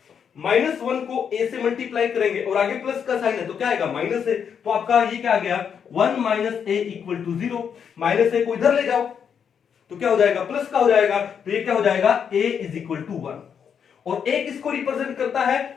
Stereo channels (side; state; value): right; quieter; 7.4 dB